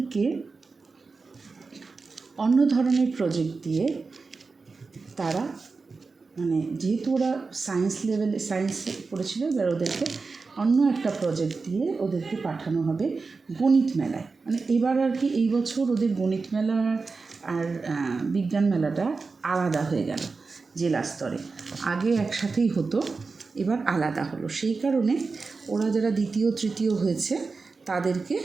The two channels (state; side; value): quieter; left; 4.3 dB